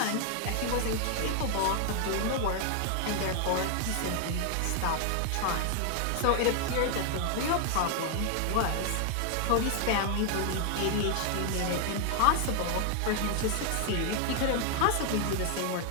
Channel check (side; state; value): both; different; correlation 0.00